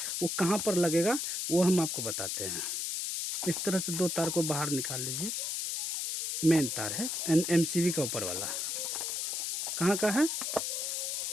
वो कहाँ पर लगेगा वो हम आपको बताते हैं। इस तरह से 2 तार को बाहर निकाल लीजिए। मेन तार है एमसीबी का ऊपर वाला। कहाँ का है?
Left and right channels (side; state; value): left; noise; hiss, 2 dB below the sound